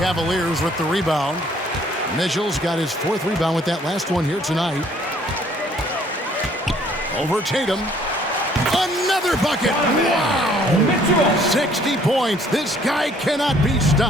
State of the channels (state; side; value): normal; both; correlation 0.60